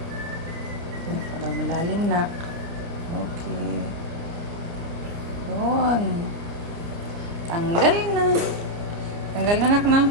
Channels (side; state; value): left; late; 29 ms